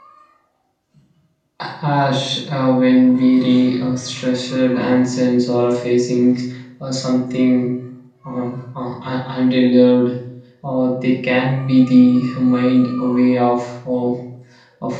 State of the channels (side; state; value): both; identical; correlation 1.00